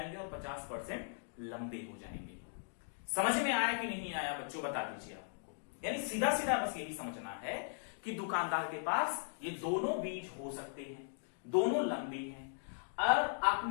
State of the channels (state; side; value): silent; right; digital silence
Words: और 50% लंबे हो जाएंगे। समझ में आया कि नहीं आया बच्चों, बता दीजिए आपको। यानी सीधा सीधा बस यही समझना है कि दुकानदार के पास ये दोनों बीज हो सकते हैं, दोनों लंबे हैं। और